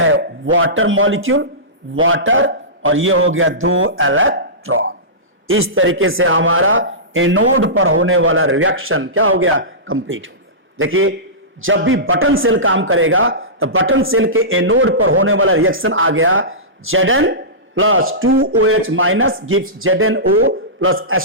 वाटर मॉलिक्यूल, वाटर, और ये हो गया 2 इलेक्ट्रॉन। इस तरीके से हमारा एनोड पर होने वाला रिएक्शन क्या हो गया, कंप्लीट हो गया। देखिए जब भी बटन सेल काम करेगा तो बटन सेल के एनोड पर होने वाला रिएक्शन आ गया Zn plus 2OH minus gives ZnO plus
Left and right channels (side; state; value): both; normal; correlation -0.20